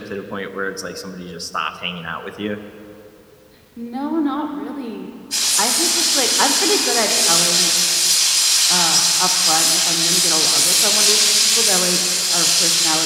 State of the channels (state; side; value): identical; both; correlation 1.00